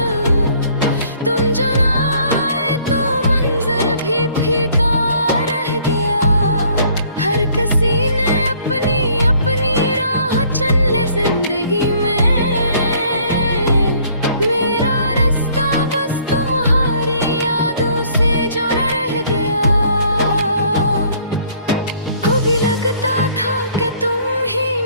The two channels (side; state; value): both; inverted; correlation -0.60